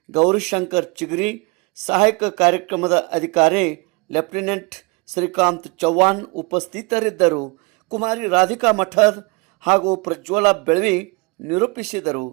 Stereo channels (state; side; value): quieter; left; 28.5 dB